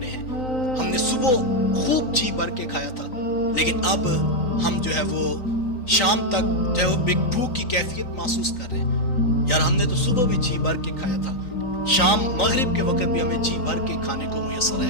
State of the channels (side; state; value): right; late; 3.9 ms